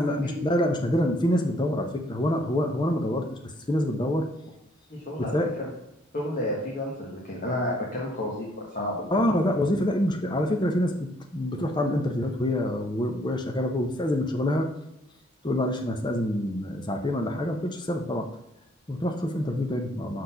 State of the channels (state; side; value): normal; both; correlation 0.65